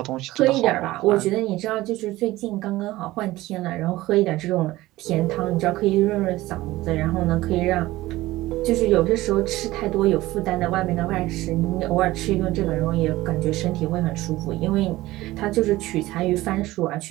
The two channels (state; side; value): quieter; left; 17.6 dB